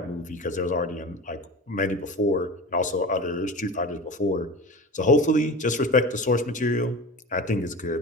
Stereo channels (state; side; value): normal; both; correlation 0.32